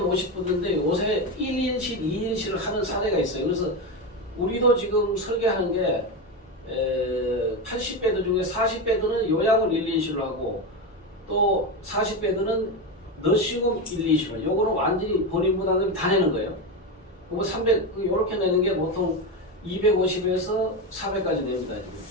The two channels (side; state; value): both; normal; correlation 0.15